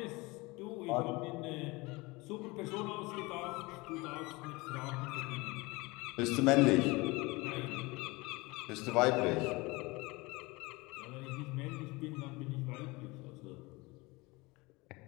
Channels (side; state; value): right; quieter; 23.8 dB